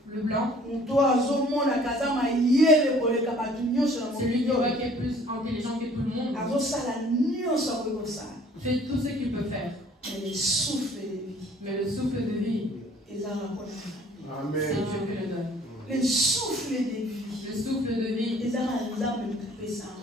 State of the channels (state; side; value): normal; both; correlation 0.54